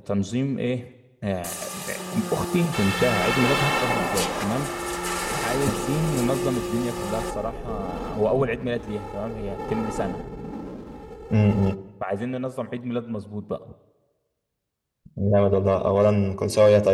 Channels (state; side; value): identical; both; correlation 1.00